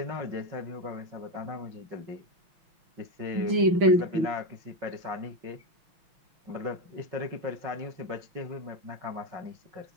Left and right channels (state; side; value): late; left; 6.1 ms